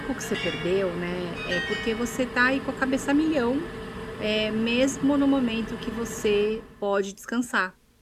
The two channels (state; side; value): identical; both; correlation 1.00